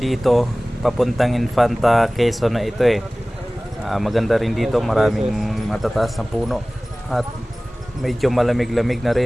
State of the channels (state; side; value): normal; both; correlation 0.98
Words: papuntang Infanta Quezon na ito maganda rin dito, maraming matataas na puno at medyo malamig-lamig na